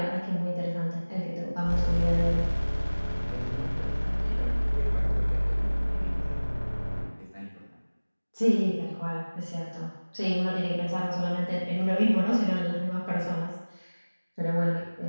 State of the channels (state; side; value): inverted; both; correlation -1.00